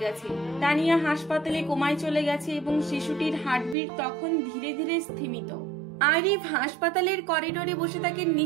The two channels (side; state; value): left; drops out; at 3.8 s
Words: গেছে। তানিয়া হাসপাতালে কোমায় চলে গেছে এবং শিশুটির হার্টবিট তখন ধীরে ধীরে স্থিমিত। আরিফ হাসপাতালের করিডোরে বসে থাকে